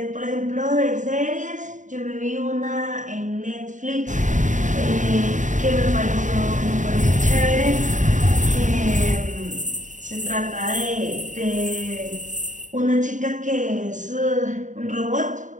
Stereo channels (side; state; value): left; late; 0.36 ms